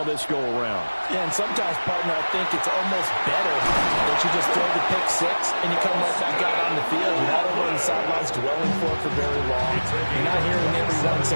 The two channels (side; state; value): both; inverted; correlation -1.00